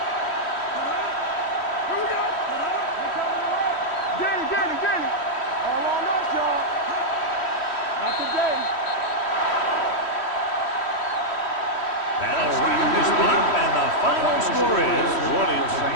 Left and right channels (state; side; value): late; right; 3.1 ms